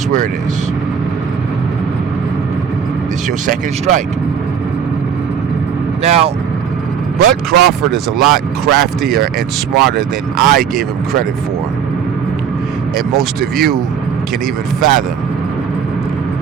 where it is. It's your second strike. Now, Bud Crawford is a lot craftier and smarter than I gave him credit for. And most of you can even fathom.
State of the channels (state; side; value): quieter; left; 7.4 dB